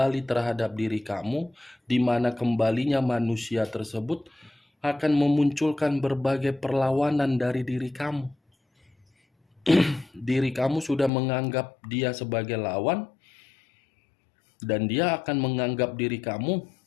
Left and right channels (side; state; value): right; drops out; at 11.1 s